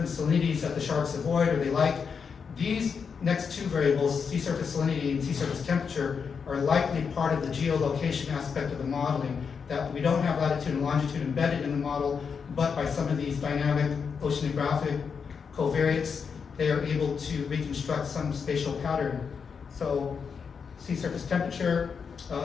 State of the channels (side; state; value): right; quieter; 6.1 dB